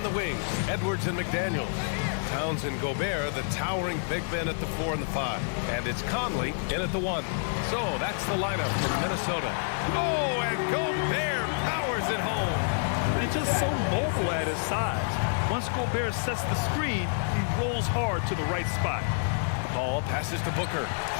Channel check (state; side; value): silent; right; 55 dB below the other